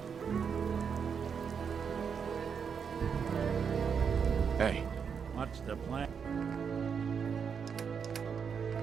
Hey. What's the plan?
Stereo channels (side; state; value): left; quieter; 6.7 dB